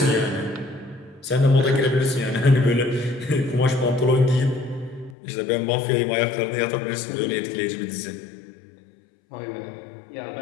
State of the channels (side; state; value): right; drops out; at 5.2 s